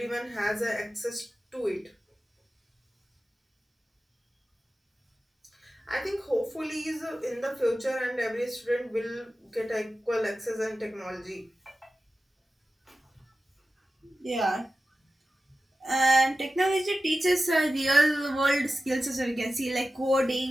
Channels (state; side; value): normal; both; correlation 0.94